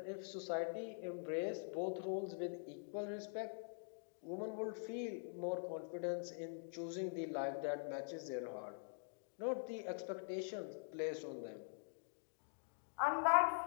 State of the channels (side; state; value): right; silent; digital silence